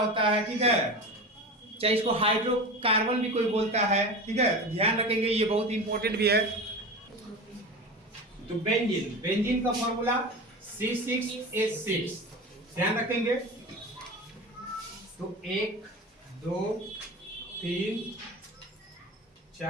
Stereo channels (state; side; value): normal; both; correlation 0.29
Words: है, ठीक है। चाहे इसको हाइड्रोकार्बन भी कोई बोलता है, ठीक है, तो ध्यान रखेंगे, ये बहुत इंपॉर्टेंट भी है। तो बेंजीन का फॉर्मूला C6H6, ध्यान रखेंगे। तो 1 2 3